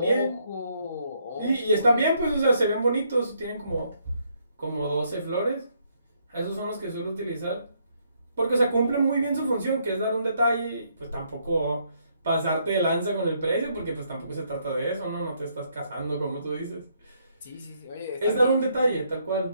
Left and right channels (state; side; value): inverted; both; correlation -0.72